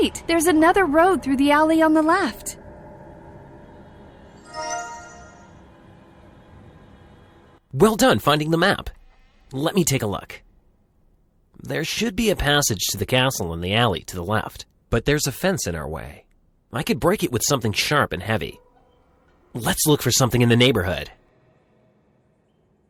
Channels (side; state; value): both; identical; correlation 1.00